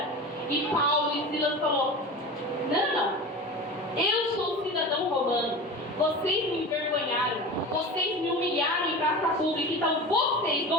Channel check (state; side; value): normal; both; correlation 0.31